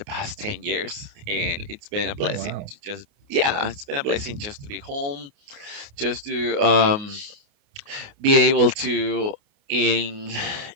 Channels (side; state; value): left; late; 29 ms